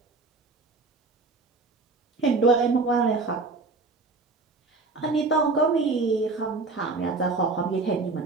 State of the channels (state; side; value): quieter; left; 3.8 dB